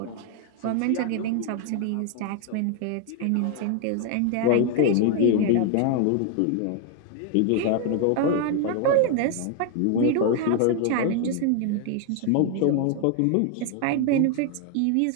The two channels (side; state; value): both; different; correlation 0.00